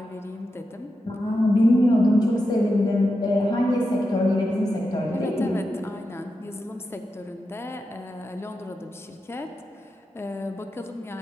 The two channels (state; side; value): normal; both; correlation 0.89